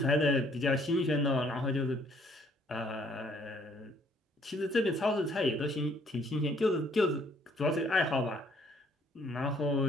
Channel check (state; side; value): normal; both; correlation 0.63